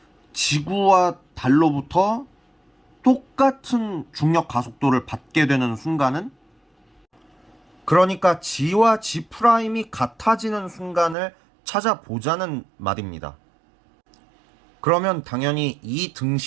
지구와 달로부터 똑같은 중력 가속도를 받게 되는 순간은, 그러니까 G와 G'이 같아지는 순간을 찾아보자는 말입니다. 그러면 당연히 이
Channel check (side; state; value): left; drops out; at 11.2 s